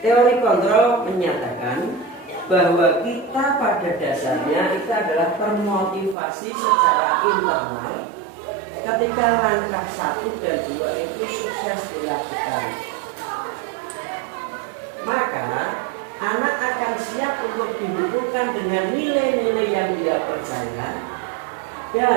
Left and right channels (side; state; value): left; drops out; at 6.2 s